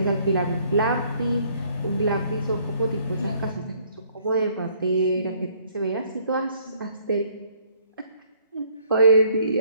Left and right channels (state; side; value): inverted; both; correlation -0.63